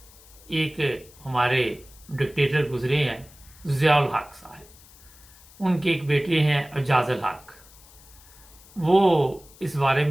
एक हमारे डिक्टेटर गुजरे हैं, ज़ियाउल हक साहब। उनके एक बेटे हैं एजाजुल हक। वो इस बारे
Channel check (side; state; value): left; noise; hiss, 24 dB below the sound